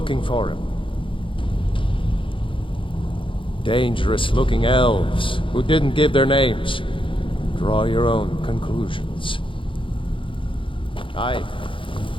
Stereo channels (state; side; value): late; right; 0.25 ms